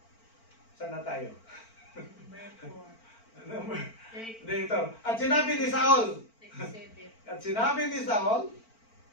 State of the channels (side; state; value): right; late; 4.4 ms